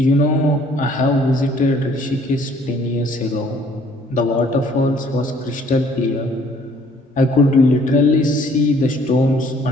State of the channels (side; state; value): both; normal; correlation 0.59